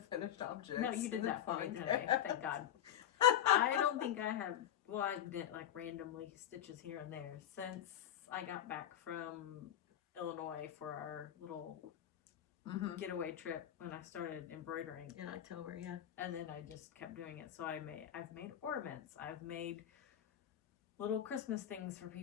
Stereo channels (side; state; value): right; quieter; 10.8 dB